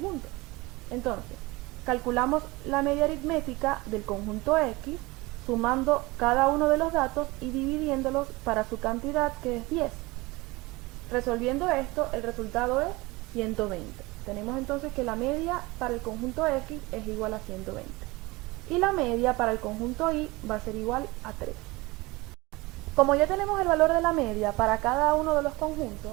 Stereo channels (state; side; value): quieter; left; 22.6 dB